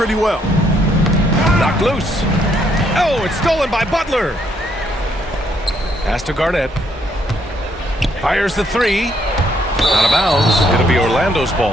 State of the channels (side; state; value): both; normal; correlation 0.71